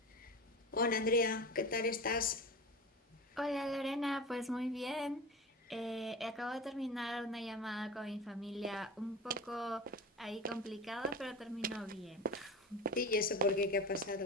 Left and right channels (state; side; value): normal; both; correlation 0.30